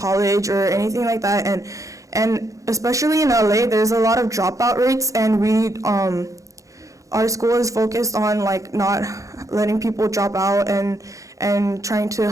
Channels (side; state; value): left; late; 0.16 ms